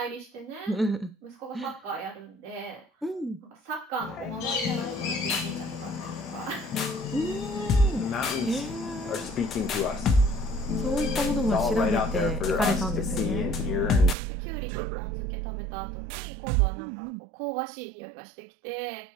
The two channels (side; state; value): left; drops out; at 14.2 s